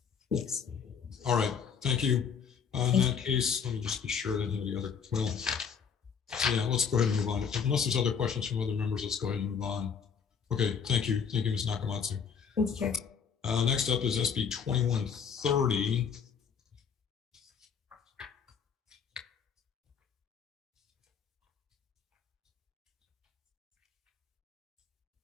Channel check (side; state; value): right; quieter; 6.7 dB